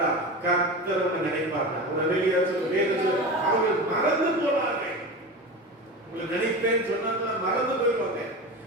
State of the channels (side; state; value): both; normal; correlation 0.27